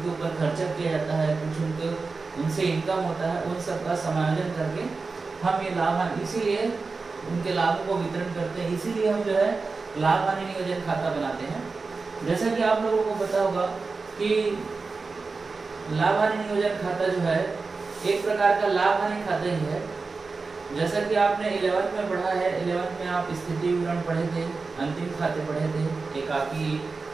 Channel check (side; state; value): left; quieter; 4.2 dB